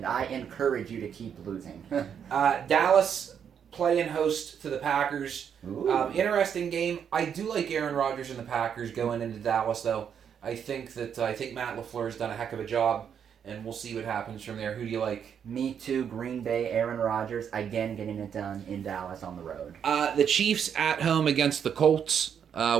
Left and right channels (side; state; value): left; quieter; 7.9 dB